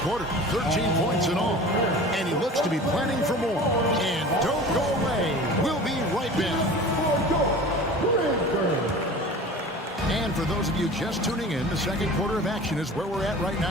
13 points in all. And he looks to be planning for more. And don't go away. We'll be right back. And for those of you just tuning in, the second quarter of action is where we're at right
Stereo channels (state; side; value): normal; both; correlation 0.39